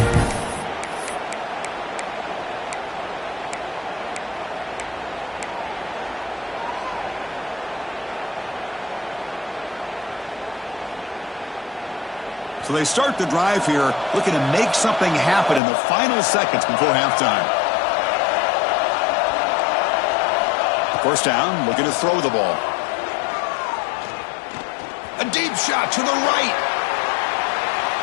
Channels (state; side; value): drops out; right; at 15.6 s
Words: So they start the drive here, looking to make something happen in the final seconds before halftime. First down, looking to throw the ball. A deep shot to the right.